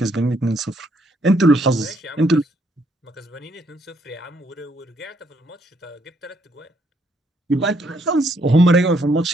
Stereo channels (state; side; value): normal; both; correlation 0.71